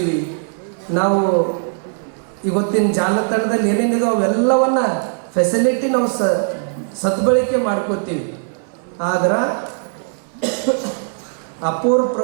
ನಾವು ಇವತ್ತಿನ ಜಾಲತಾಣದಲ್ಲಿ ಏನೇನಿದೆ ಅವೆಲ್ಲವನ್ನ ಫೆಸಿಲಿಟಿ ನಾವು ಸದ್ಬಳಕೆ ಮಾಡ್ಕೋತೀವಿ. ಆದ್ರೆ ಅಪೂರ್ವ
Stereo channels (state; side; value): silent; left; 61 dB below the other